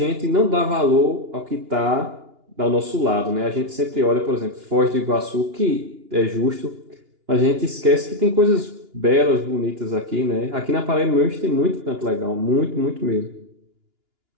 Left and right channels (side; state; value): left; late; 2.9 ms